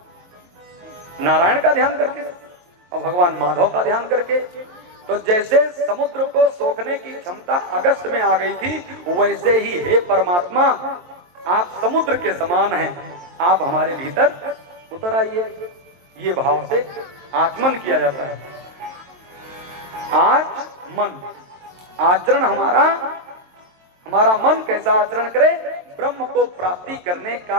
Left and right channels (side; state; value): left; late; 23 ms